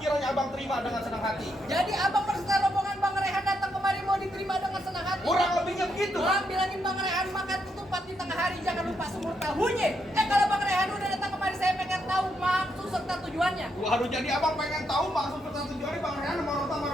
abang terima dengan senang hati. Jadi abang berserta rombongan Bang Rehan datang kemari mau diterima dengan senang hati. Kurang lebihnya begitu. Bang bilangin Bang Rehan makan ketupat di tengah hari jangan lupa sumur tahunya. Kalau Bang Rehan udah datang kemari saya pengen tahu maksud serta tujuannya. Waduh, jadi abang pengen tahu maksud serta tujuannya Bang Rehan sama orang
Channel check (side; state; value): both; normal; correlation 0.79